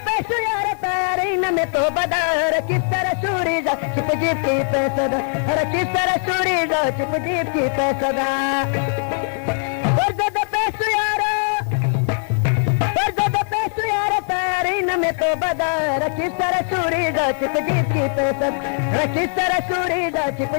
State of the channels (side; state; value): right; silent; 57 dB below the other